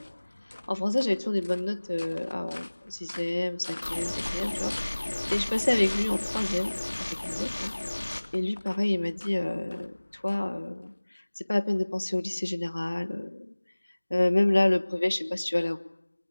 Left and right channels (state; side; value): inverted; both; correlation -1.00